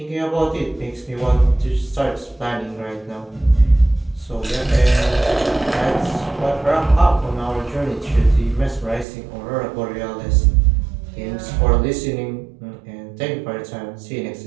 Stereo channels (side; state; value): left; drops out; at 9.1 s